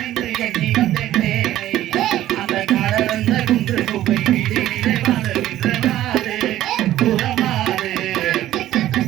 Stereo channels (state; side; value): quieter; left; 13.6 dB